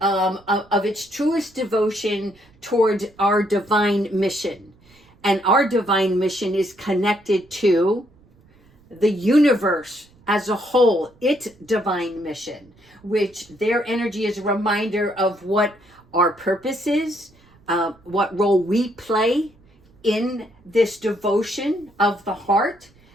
of its truest devotion towards our divine mission. And our divine mission is connected to the universe as a whole, its divine mission, which their energy is a reminder of what our purpose is, what role we play in this devotion of the heart.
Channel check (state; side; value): noise; right; rumble, 30 dB below the sound